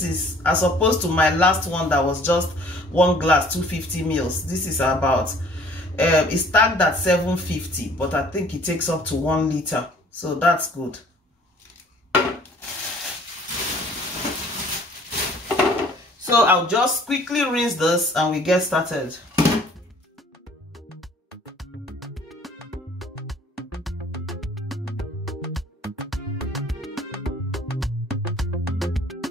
is as opposed to my last one that was just 1 glass 250 mils. This is about it's tagged at 750, but I think it takes up to 1 liter, so that's good. So I'll just quickly rinse this and we get started.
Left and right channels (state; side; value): normal; both; correlation 0.54